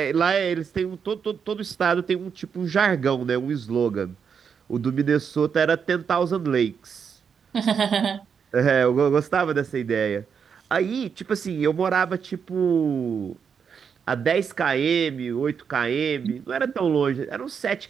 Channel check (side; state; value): left; quieter; 6.7 dB